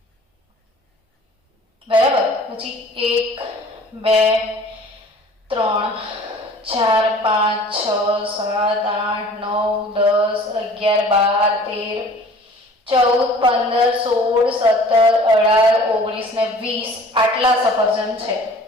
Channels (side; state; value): both; normal; correlation 0.48